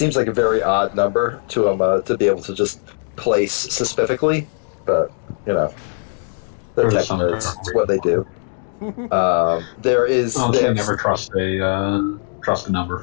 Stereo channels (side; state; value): right; silent; digital silence